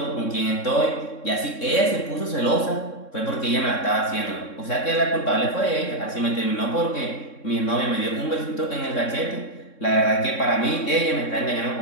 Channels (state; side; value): late; right; 3.6 ms